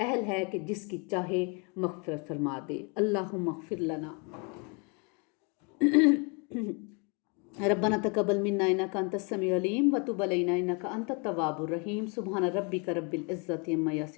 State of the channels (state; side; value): quieter; right; 33.6 dB